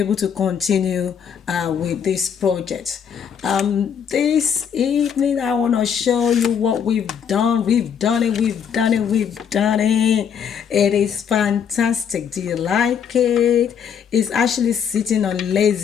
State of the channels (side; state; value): right; quieter; 7.7 dB